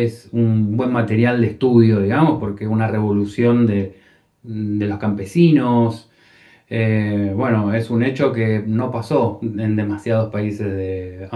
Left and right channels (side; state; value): both; identical; correlation 1.00